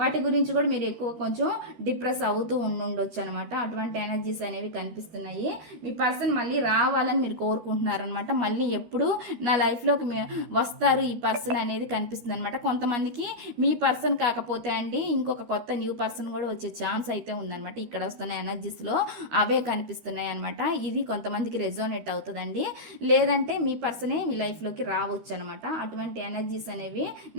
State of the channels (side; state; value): left; late; 13 ms